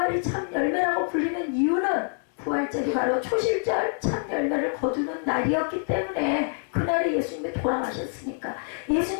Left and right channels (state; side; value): silent; right; 58 dB below the other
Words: 참 열매라고 불리는 이유는 부활절이 바로 초실절 참 열매를 거두는 날이었기 때문에 그날에 예수님이 돌아가셨으니까